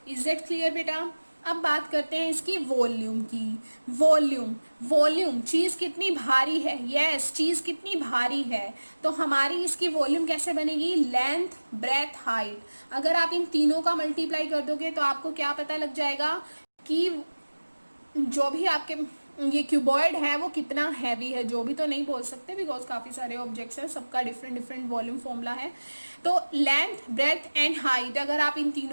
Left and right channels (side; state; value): both; inverted; correlation -1.00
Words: इज दैट क्लियर बेटा? अब बात करते हैं इसकी वॉल्यूम की। वॉल्यूम, वॉल्यूम, चीज़ कितनी भारी है। यस, चीज़ कितनी भारी है। तो हमारी इसकी वॉल्यूम कैसे बनेगी? Length, breadth, height. अगर आप इन तीनों का मल्टीप्लाई कर दोगे तो आपको क्या पता लग जाएगा कि जो भी आपके ये क्यूबॉइड है वो कितना हैवी है। जो भी तो नहीं बोल सकते, बिकॉज काफ़ी सारे ऑब्जेक्ट्स हैं, सबका डिफरेंट डिफरेंट वॉल्यूम फॉर्मूला है। तो लेंथ, ब्रेथ एंड हाइट, अगर आप इन